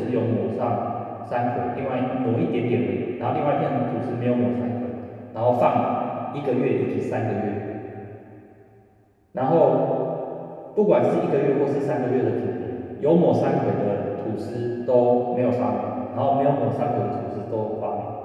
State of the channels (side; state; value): both; identical; correlation 1.00